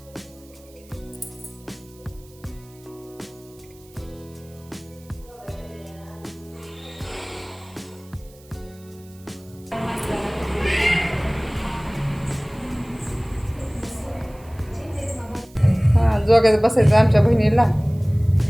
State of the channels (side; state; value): right; noise; hiss, 26 dB below the sound